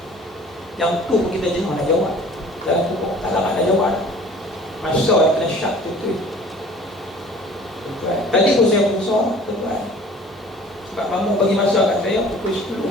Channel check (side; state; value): both; normal; correlation 0.49